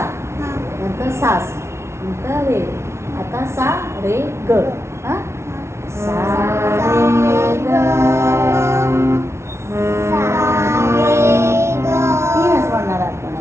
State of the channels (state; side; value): late; left; 0.13 ms